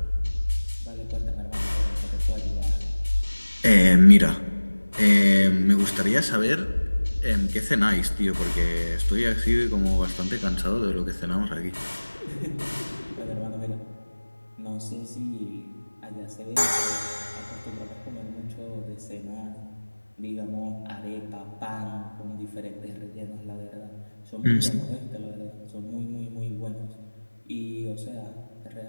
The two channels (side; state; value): both; inverted; correlation -1.00